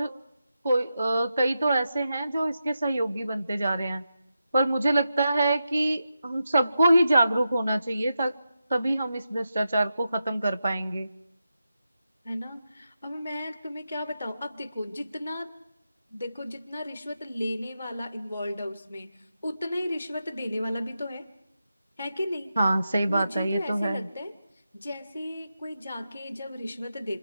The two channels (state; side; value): inverted; both; correlation -0.89